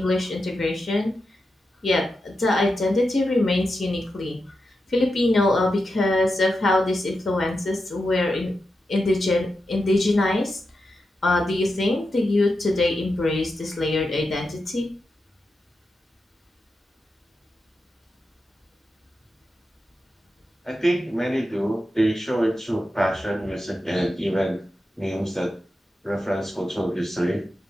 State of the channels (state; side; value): normal; both; correlation 0.89